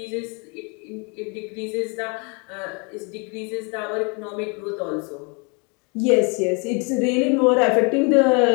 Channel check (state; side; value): quieter; right; 32.9 dB